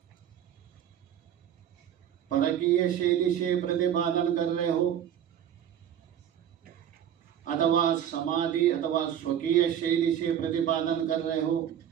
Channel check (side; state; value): left; quieter; 9.7 dB